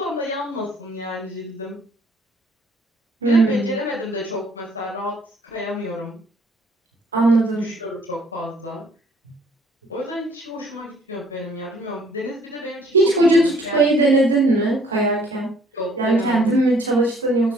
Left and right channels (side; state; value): both; normal; correlation 0.60